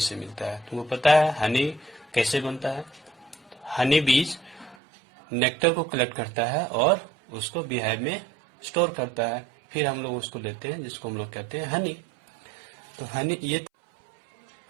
से मिलता है। तुमको पता है हनी कैसे बनता है? हनी बीज नेक्टर को कलेक्ट करता है और उसको बीहाइव में स्टोर करता है, फिर हम लोग उसको लेते हैं जिसको हम लोग कहते हैं हनी। तो हनी, ये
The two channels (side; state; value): left; drops out; at 4.8 s